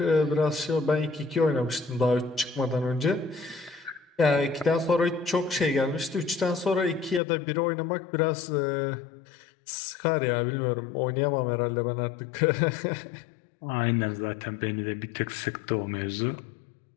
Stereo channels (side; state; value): right; drops out; at 7.2 s